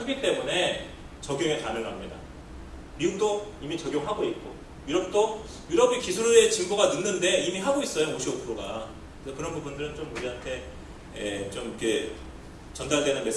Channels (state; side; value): identical; both; correlation 1.00